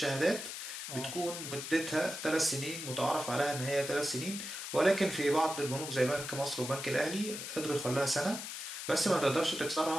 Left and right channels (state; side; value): noise; left; hiss, 7 dB below the sound